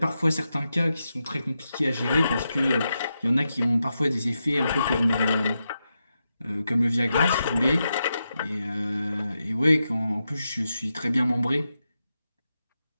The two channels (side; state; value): both; inverted; correlation -0.87